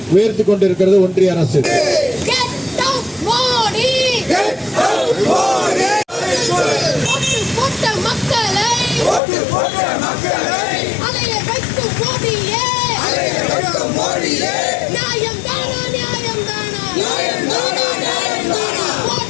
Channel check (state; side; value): drops out; right; at 9.2 s